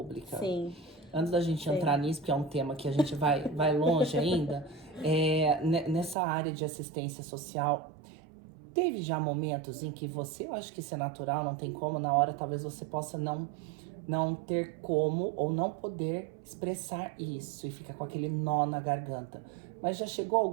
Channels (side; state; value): left; drops out; at 6.2 s